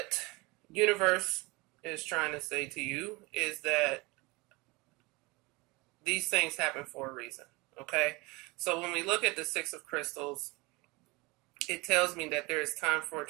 universe is trying to say to you is that these things happen for a reason, okay? So when we look at the Six of Crystals, it tells me that there is time for a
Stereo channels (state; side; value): quieter; left; 24.8 dB